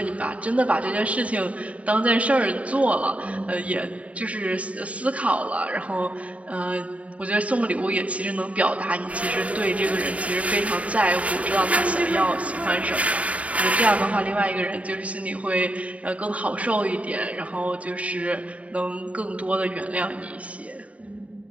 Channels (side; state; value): left; late; 0.066 ms